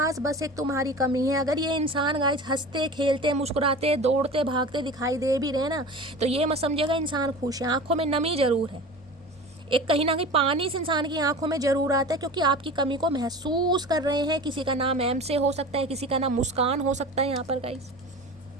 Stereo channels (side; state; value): both; normal; correlation 0.35